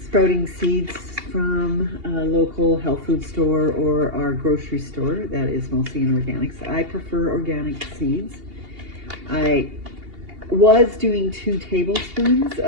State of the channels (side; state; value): left; late; 2.8 ms